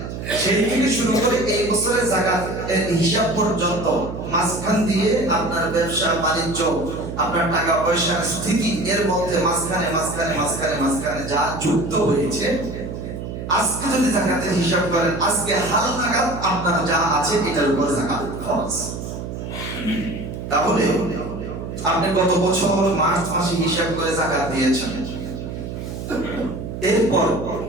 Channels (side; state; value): right; noise; hum, 7 dB below the sound